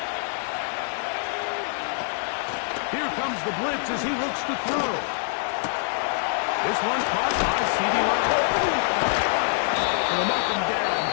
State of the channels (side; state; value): right; silent; digital silence